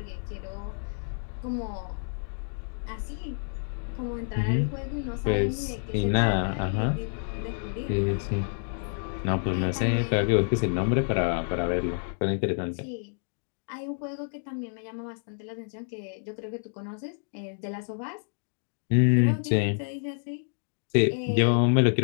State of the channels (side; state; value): right; silent; digital silence